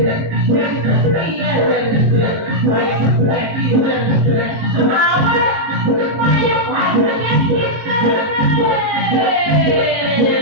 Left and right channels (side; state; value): left; late; 19 ms